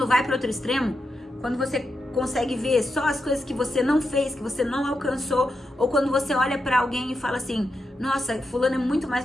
vai para outro extremo, quando você consegue ver só as coisas que você não fez, que você não alcançou, ou quando você olha para alguém e fala assim, nossa, fulano é muito mais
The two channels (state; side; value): normal; both; correlation 0.86